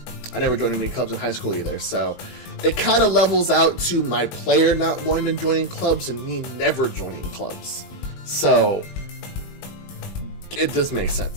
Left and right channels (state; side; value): late; right; 20 ms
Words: I never joined any clubs in high school either, so it kind of levels out to my player not wanting to join clubs and me never joining clubs. So it does make